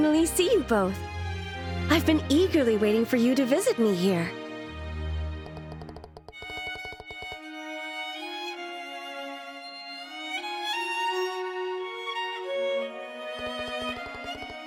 see you both. I've been eagerly waiting for you to visit me here.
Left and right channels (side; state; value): both; identical; correlation 1.00